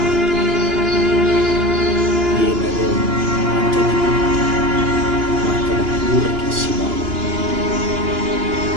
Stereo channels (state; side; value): late; left; 2.9 ms